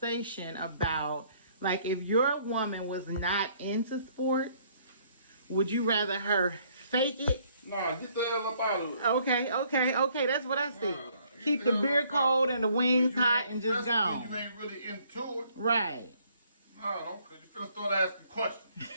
about, like, if your woman was not into sports, would you rather her fake it? Nah, get the hell up out of it. Okay. That's what I see. Keep the beer cold and the wings hot and just go. You ain't really into it. Right. No, don't, because you're going to start asking questions.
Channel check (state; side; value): inverted; both; correlation -0.63